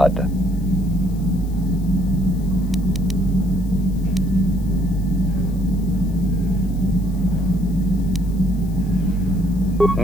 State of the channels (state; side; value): noise; left; hiss, 25 dB below the sound